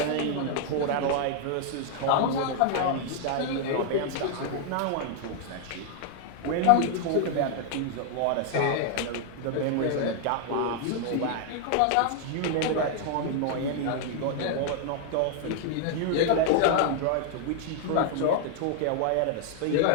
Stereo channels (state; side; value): different; both; correlation 0.00